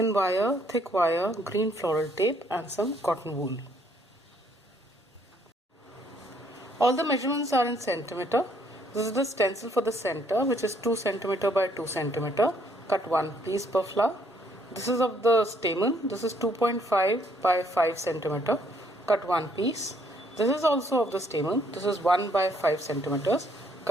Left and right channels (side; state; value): both; normal; correlation 0.67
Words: wire, thick wire, green floral tape and some cotton wool. All the measurements are in centimeter. This is the stencil for the center, which is 2 centimeter by 2 centimeter. Cut one piece per flower. This is of the stamen. This is 2.5 by 5 centimeter. Cut one piece. This is also of the stamen. This is 1 by 5 centimeters.